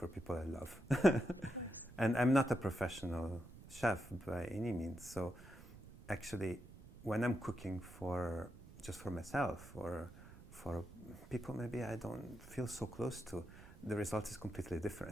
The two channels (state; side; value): noise; right; rumble, 18 dB below the sound